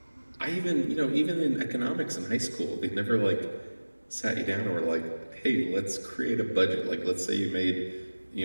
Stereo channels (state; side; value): inverted; both; correlation -1.00